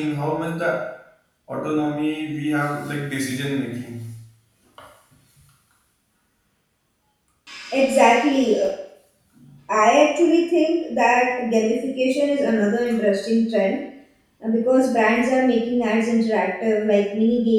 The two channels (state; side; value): identical; both; correlation 1.00